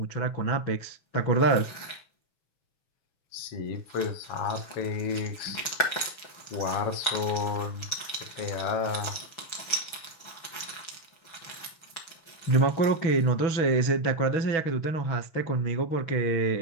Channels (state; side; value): late; right; 6.1 ms